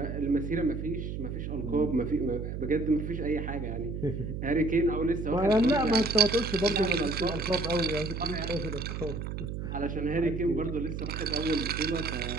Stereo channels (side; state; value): right; noise; hum, 5 dB below the sound